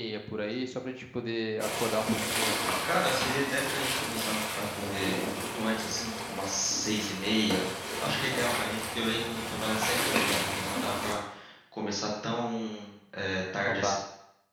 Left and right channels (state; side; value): identical; both; correlation 1.00